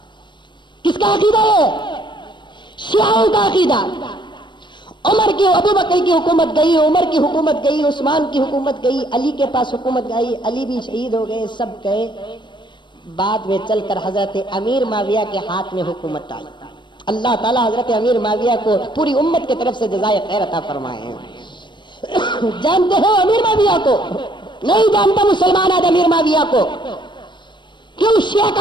کس کا عقیدہ ہے؟ شیعوں کا عقیدہ. عمر کی ابو بکر کی حکومت گئی، عمر کی حکومت گئی، عثمان کی حکومت گئی، علی کے پاس حکومت گئی، علی بھی شہید ہو گئے، سب گئے. بعد میں چل کر حضرت امیر معاویہ کے ہاتھ میں حکومت آئی. اللہ تعالیٰ حضرت امیر معاویہ کو پوری امت کی طرف سے جزائے خیر عطا فرمائے. جانتے ہو امیر معاویہ کو؟ نہیں جانتا مسلمان آج امیر معاویہ کو. کیوں؟ شیعہ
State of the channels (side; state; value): right; late; 0.22 ms